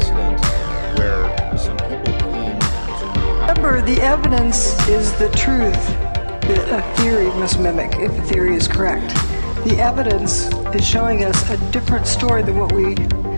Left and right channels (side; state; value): both; inverted; correlation -1.00